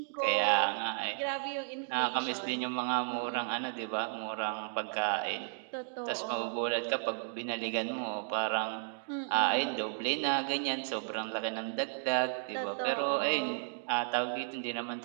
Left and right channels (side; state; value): left; silent; digital silence